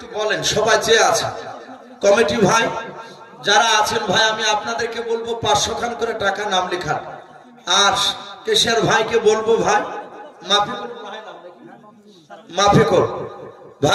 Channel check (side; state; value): both; identical; correlation 1.00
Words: বলেন, সবাই চেয়ে আছে কমিটি ভাই যারা আছেন ভাই, আমি আপনাদেরকে বলবো 500 খান করে টাকা নাম লেখান, আর কেশিয়ার ভাইকে বলবো ভাই মাফিকুল